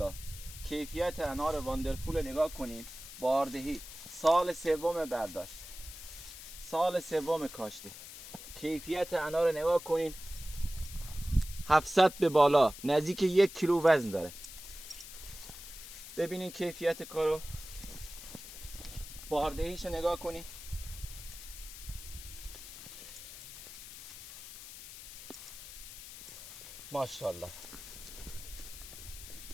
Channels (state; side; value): noise; left; hiss, 13 dB below the sound